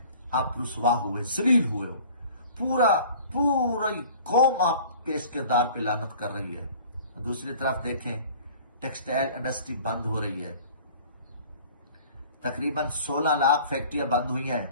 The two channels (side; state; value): both; inverted; correlation -0.47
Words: آپ رسوا ہوئے، ذلیل ہوئے ہو، پوری قوم آپ کے اس کردار پہ لعنت کر رہی ہے۔ دوسری طرف دیکھیں، ٹیکسٹائل انڈسٹری بند ہو رہی ہے، تقریباً 16 لاکھ فیکٹریاں بند ہوئی ہیں،